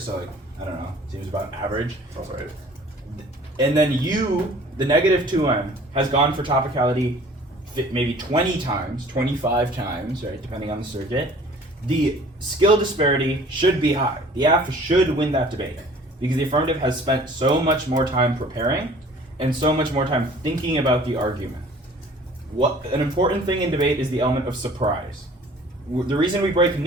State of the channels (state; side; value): normal; both; correlation 0.49